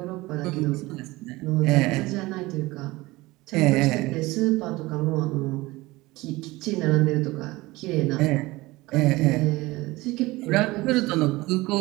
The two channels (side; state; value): left; quieter; 20.4 dB